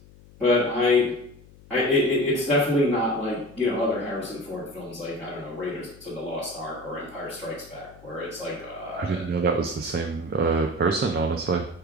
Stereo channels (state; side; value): noise; left; hum, 23 dB below the sound